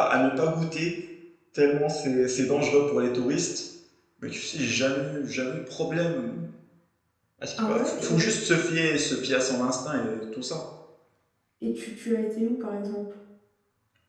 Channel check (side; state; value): both; identical; correlation 1.00